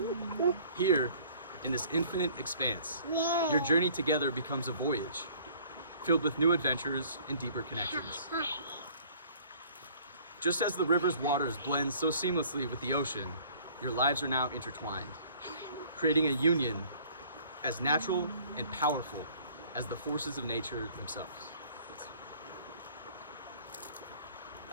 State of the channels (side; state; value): both; inverted; correlation -0.54